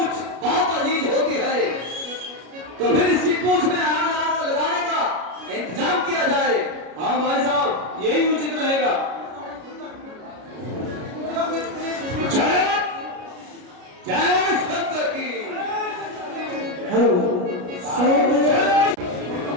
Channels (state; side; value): late; left; 33 ms